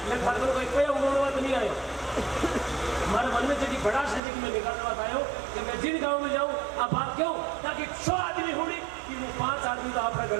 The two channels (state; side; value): drops out; left; at 4.2 s